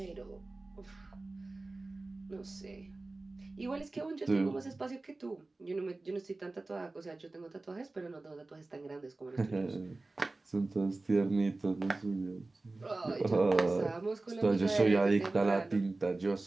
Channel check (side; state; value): left; quieter; 3.2 dB